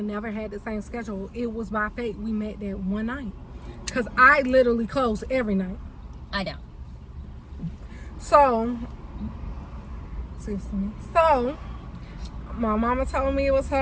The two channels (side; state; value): both; identical; correlation 1.00